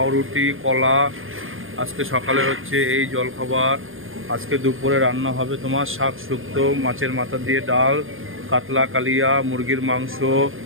কলা। আজকে সকালে হচ্ছে এই জলখাবার। আজকে দুপুরে রান্না হবে তোমার শাক শুক্তো, মাছের মাথা দিয়ে ডাল, কাতলা কালিয়া, মুরগির মাংস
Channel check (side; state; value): left; late; 0.59 ms